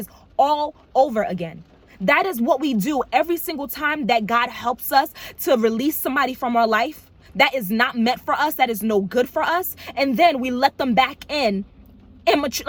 all over again. That is what we do every single time that God helps us to release somebody from our life that is not meant for us, that is no good for us. And then we let them back in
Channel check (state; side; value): identical; both; correlation 1.00